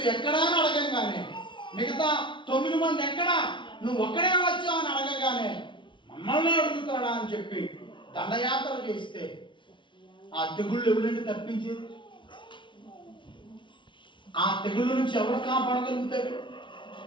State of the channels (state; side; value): late; right; 0.24 ms